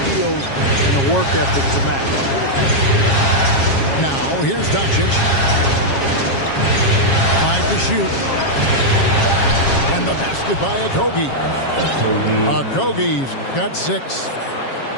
and a work ethic to match. Now, here's Doncic. 5 to shoot. And the basket by Okogie. Okogie's got 6.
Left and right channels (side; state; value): right; late; 7.4 ms